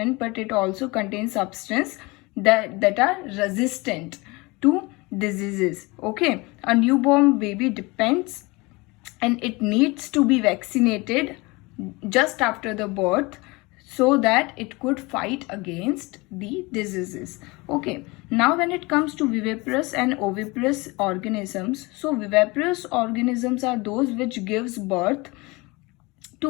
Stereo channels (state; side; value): quieter; right; 24.6 dB